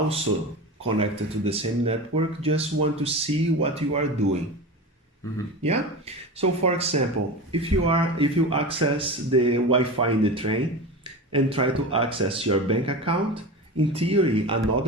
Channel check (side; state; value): both; normal; correlation 0.28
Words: connected to the same network just want to see what you are doing. Mm-hmm. Yeah. So, for example, if you access the Wi-Fi in the train and try to access your bank account, in theory,